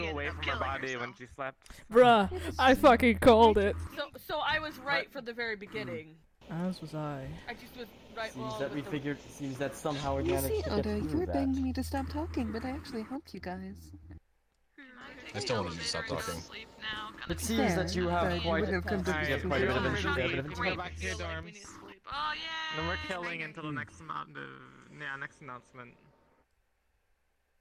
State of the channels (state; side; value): identical; both; correlation 1.00